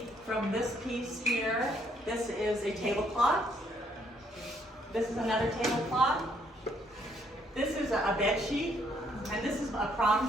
from this piece here, this is a tablecloth. This is another tablecloth. This is a bed sheet, and this is a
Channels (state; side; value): normal; both; correlation 0.69